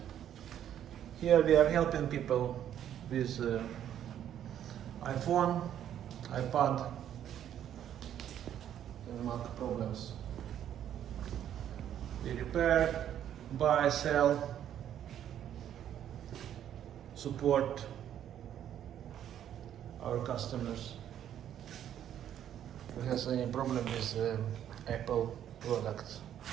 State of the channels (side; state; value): left; quieter; 10.4 dB